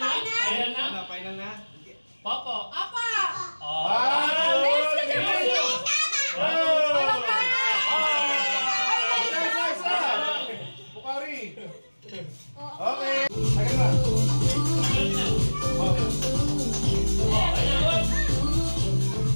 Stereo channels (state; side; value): inverted; both; correlation -1.00